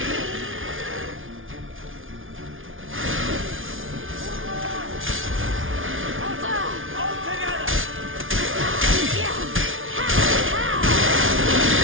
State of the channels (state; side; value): late; left; 0.58 ms